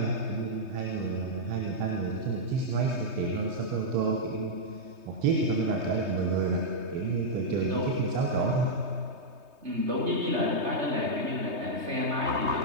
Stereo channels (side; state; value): left; late; 3.2 ms